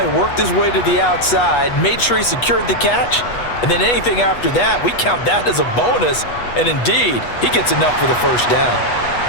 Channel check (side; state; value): right; late; 8.2 ms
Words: worked his way to the outside, made sure he secured the catch, and then anything after that, we count that as a bonus, and indeed, he gets enough for the 1st down.